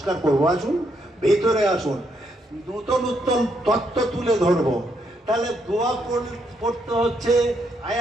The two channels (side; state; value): both; normal; correlation 0.76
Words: করব, আসুন ভিতরে আসুন, নতুন নতুন তত্ত্ব তুলে ধরবো। তাহলে দোয়া পড়তে হচ্ছে, আয়